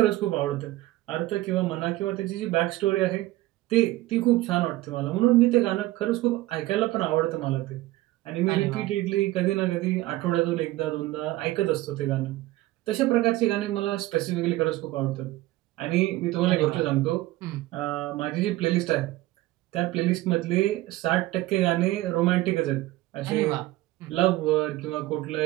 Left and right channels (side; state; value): left; quieter; 17.4 dB